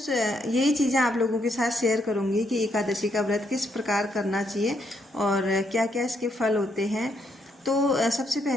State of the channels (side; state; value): both; normal; correlation 0.76